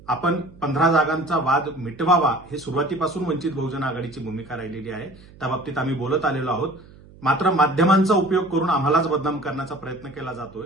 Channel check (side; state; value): right; noise; hum, 23 dB below the sound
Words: आपण 15 जागांचा वाद मिटवावा हे सुरुवातीपासून वंचित बहुजन आघाडीची भूमिका राहिलेली आहे. त्या बाबतीत आम्ही बोलत आलेलो आहोत. मात्र माध्यमांचा उपयोग करून आम्हालाच बदनाम करण्याचा प्रयत्न केला जातोय,